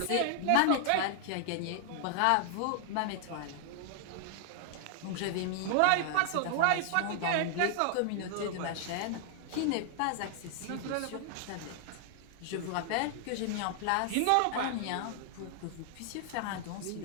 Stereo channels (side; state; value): both; different; correlation 0.00